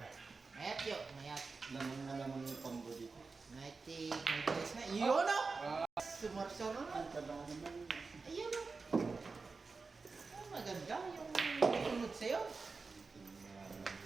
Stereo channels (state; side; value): quieter; left; 4.3 dB